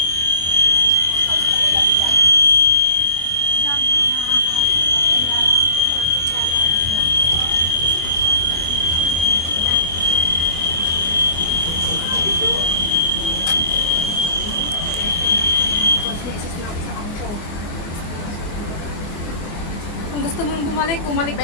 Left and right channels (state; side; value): late; right; 25 ms